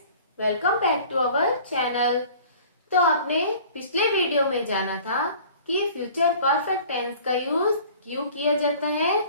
welcome back to our channel. तो आपने पिछले वीडियो में जाना था कि फ्यूचर परफेक्ट टेंस का यूज क्यों किया जाता है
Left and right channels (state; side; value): inverted; both; correlation -0.47